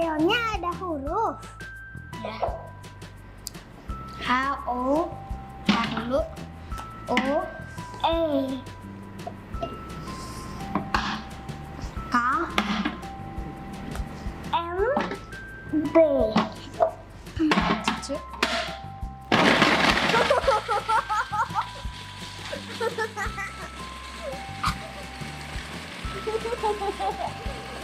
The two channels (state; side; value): identical; both; correlation 1.00